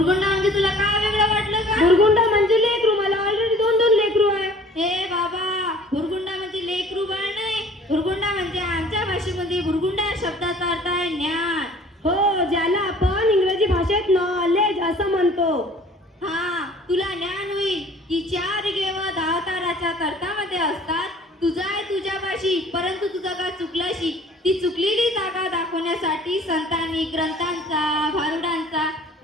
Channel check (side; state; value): both; normal; correlation 0.50